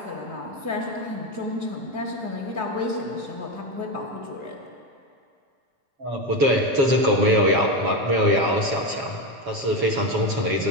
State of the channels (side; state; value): left; late; 7.2 ms